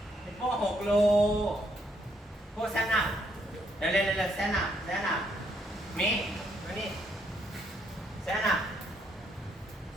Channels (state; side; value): normal; both; correlation 0.72